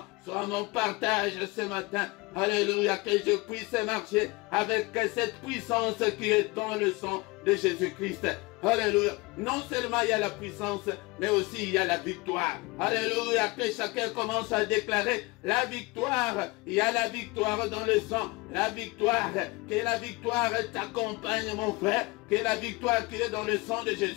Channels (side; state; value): right; quieter; 24.4 dB